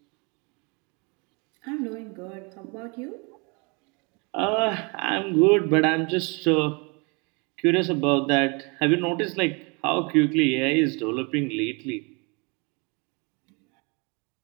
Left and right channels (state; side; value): quieter; left; 31.3 dB